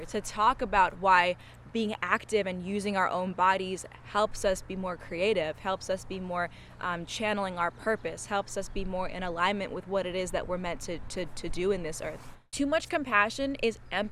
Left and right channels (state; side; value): identical; both; correlation 1.00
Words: to talk about why being active and using our own bodies helps us be more creative, helps us be more channeling our purpose, helps us be more in alignment with what it is that we're meant to do in this earth. Too much compassion is